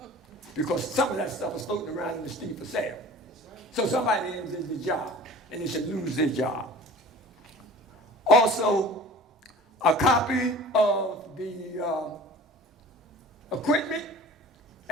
Because some of that stuff was floating around in the street for sale. So somebody did the job, and they should lose their job. Also, a copy of the equipment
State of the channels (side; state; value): both; normal; correlation 0.43